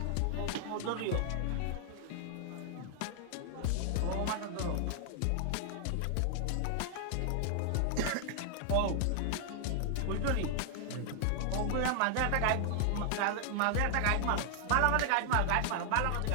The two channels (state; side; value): different; both; correlation 0.00